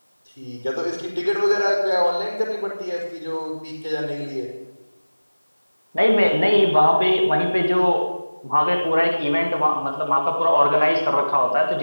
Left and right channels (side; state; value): both; inverted; correlation -1.00